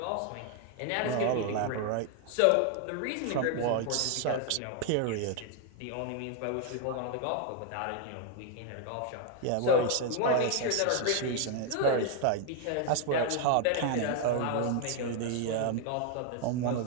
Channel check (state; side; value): different; both; correlation 0.00